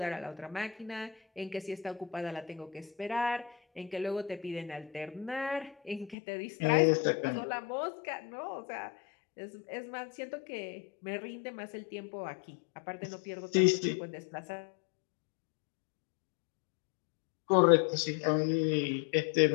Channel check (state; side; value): drops out; right; at 6.2 s